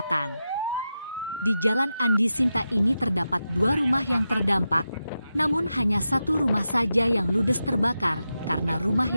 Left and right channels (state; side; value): inverted; both; correlation -0.90